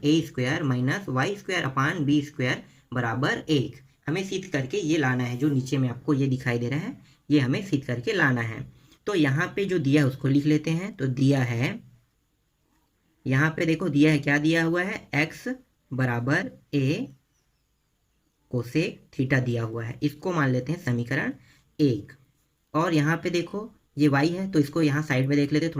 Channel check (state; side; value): identical; both; correlation 1.00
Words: a square minus y square upon b square बराबर 1। हमें सिद्ध करके ये लाना है, जो नीचे में आपको ये दिखाई दे रहा है, ये हमें सिद्ध करके लाना है। तो यहाँ पे जो दिया है उसको लिख लेते हैं। तो दिया है, यहाँ पे देखो दिया है, क्या दिया हुआ है, x बराबर a कोसेक थीटा दिया हुआ है, इसको मान लेते हैं समीकरण 1। और यहाँ पे देखो ये y है, तो इसको यहाँ साइड में देख लेते हैं